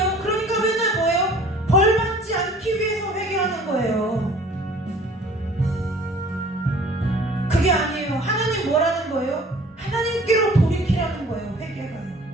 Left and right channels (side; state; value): both; normal; correlation 0.50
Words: 그러니까 맨날 뭐예요? 벌 받지 않기 위해서 회개하는 거예요. 그게 아니에요. 하나님 뭐라는 거예요? 하나님께로 돌이키라는 거예요. 회개가요.